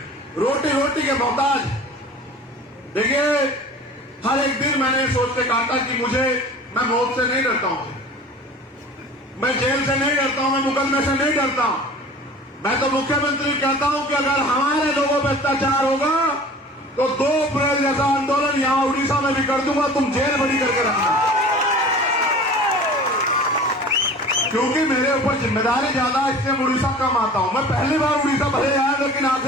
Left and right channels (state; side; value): normal; both; correlation 0.42